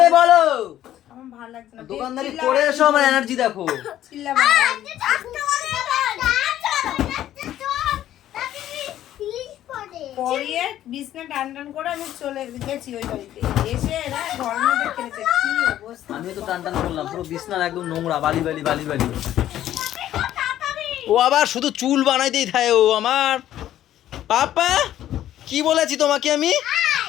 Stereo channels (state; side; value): quieter; right; 12.4 dB